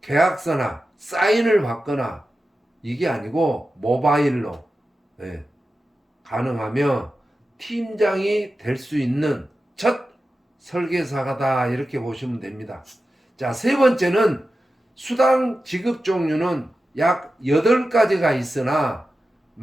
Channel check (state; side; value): normal; both; correlation 0.92